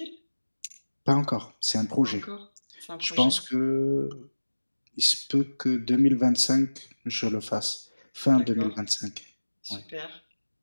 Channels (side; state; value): both; inverted; correlation -1.00